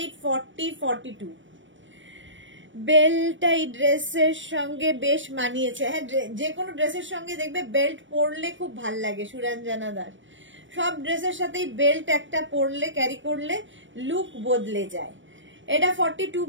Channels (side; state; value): left; late; 0.56 ms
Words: 40, 42 বেল্টটা এই ড্রেসের সঙ্গে বেশ মানিয়েছে। হ্যাঁ, যে কোনো ড্রেসের সঙ্গে দেখবে বেল্ট পরলে খুব ভাল লাগে। সুরঞ্জনা দাস, সব ড্রেসের সাথেই বেল্ট একটা পরলে, ক্যারি করলে লুক বদলে যায়। এটা 42